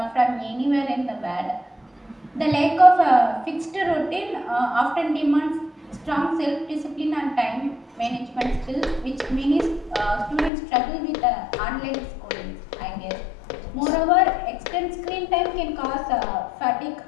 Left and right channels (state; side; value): drops out; right; at 10.5 s